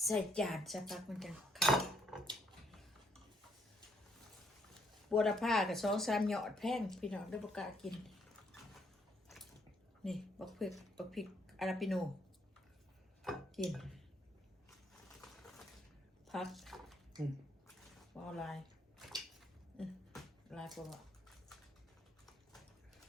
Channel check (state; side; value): normal; both; correlation 0.70